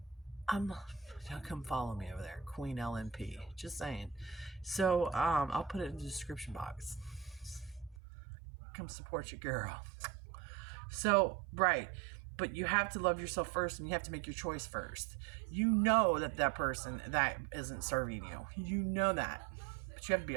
come follow me over there, Queen LNP. Just saying. So, I'll put it in the description box. Come support your girl. So, right. But you have to love yourself first, and you have to make your choice first. You know that person that isn't serving you. You know that. But you have to be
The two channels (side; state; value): left; drops out; at 8.0 s